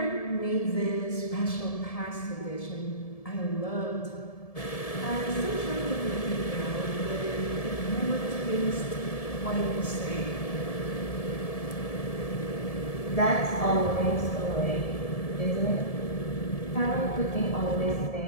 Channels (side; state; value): right; late; 1.7 ms